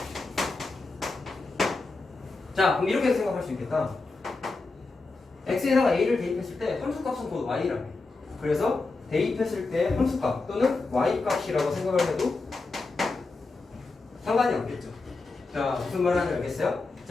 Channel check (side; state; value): right; quieter; 3.6 dB